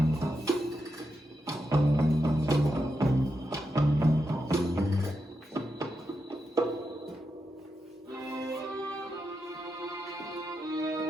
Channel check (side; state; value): both; normal; correlation 0.86